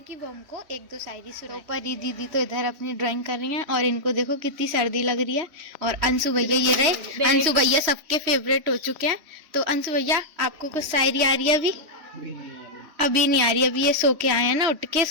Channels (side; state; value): left; late; 3.1 ms